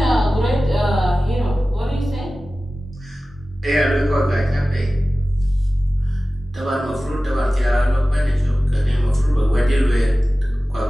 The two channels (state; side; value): normal; both; correlation 0.96